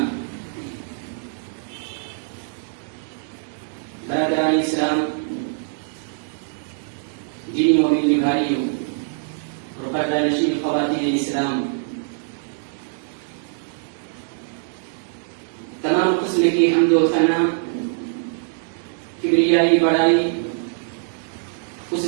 برادران اسلام، دینی و ملی بھائیوں اور پردہ نشین خواتین اسلام، تمام قسم کی حمد و ثنا، کبریائی بڑائی اس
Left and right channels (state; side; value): silent; left; digital silence